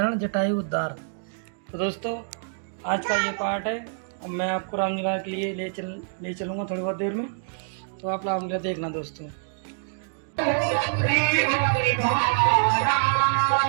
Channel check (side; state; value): left; silent; digital silence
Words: जटायु उद्धार। तो दोस्तों आज का ये पार्ट है। अब मैं आपको रामलीला के लिए ले चलूँगा थोड़ी बहुत देर में, तो आप रामलीला देखना दोस्तों।